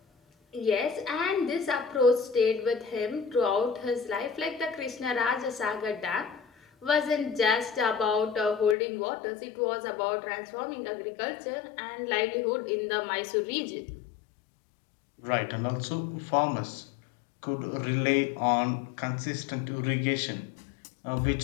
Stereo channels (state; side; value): drops out; right; at 8.8 s